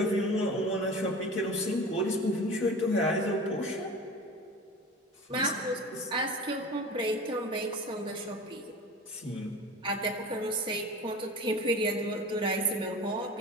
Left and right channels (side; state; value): both; normal; correlation 0.35